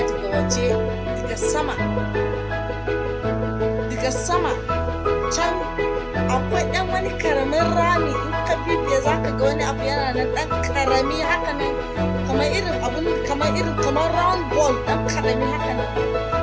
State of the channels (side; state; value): both; identical; correlation 1.00